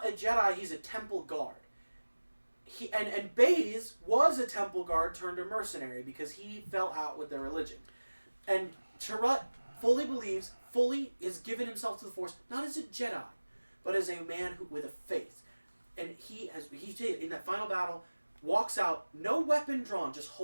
a Jedi, he's a temple guard. And Baze was a temple guard turned a mercenary because he fell out with their religion. And Chirrut fully is given himself to the Force, not as a Jedi, but as a man with a faith. And he did, in that final battle, walks out, no weapon drawn, just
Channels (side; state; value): both; inverted; correlation -1.00